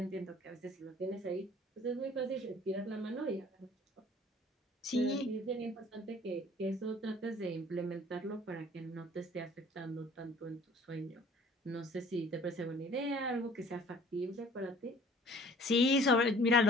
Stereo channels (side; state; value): both; normal; correlation 0.51